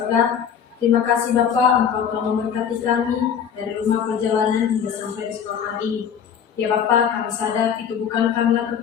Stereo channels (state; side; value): quieter; right; 7.9 dB